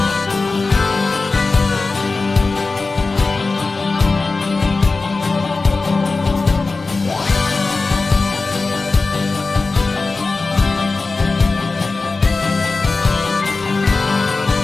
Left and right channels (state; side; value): quieter; right; 3.8 dB